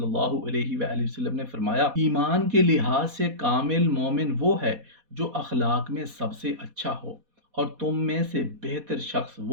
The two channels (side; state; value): left; late; 4.2 ms